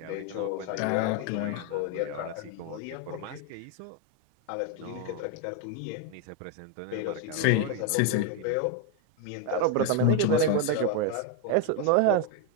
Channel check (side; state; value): both; different; correlation 0.01